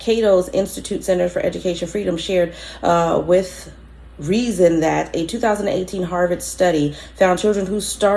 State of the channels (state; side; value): identical; both; correlation 1.00